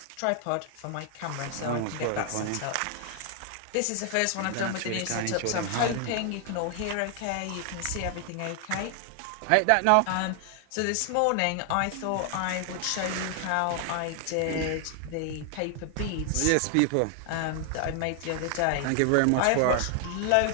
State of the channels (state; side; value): different; both; correlation 0.00